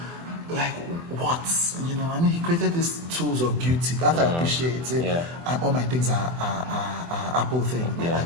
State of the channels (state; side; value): late; left; 24 ms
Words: like what? You know, I mean, he created these tools of beauty that I appreciate. Yeah. All my things are Apple things, my Yeah.